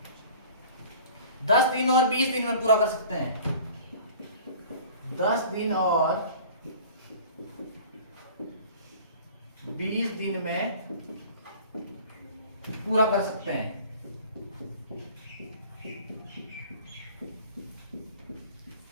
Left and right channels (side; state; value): both; inverted; correlation -0.46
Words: 10 दिन और 20 दिन में पूरा कर सकते हैं, 10 दिन और 20 दिन में पूरा कर सकते हैं,